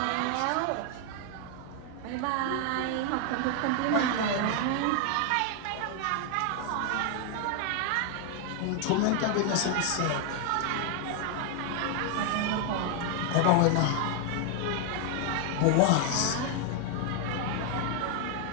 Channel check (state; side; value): different; both; correlation 0.00